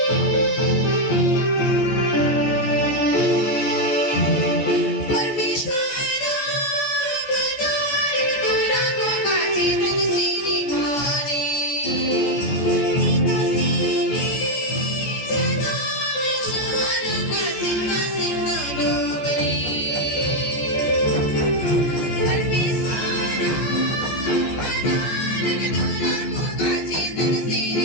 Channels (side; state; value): right; late; 14 ms